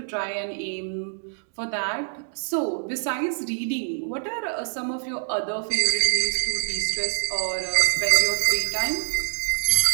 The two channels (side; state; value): left; silent; digital silence